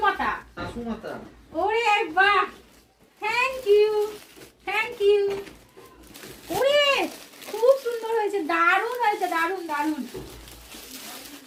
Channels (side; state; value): both; identical; correlation 1.00